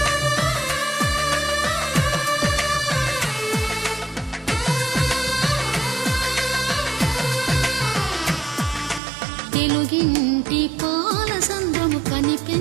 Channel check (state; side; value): drops out; left; at 9.0 s